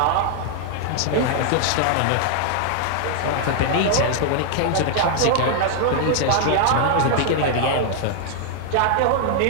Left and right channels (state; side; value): different; both; correlation 0.00